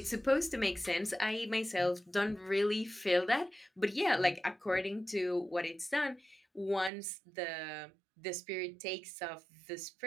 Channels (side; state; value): left; drops out; at 6.9 s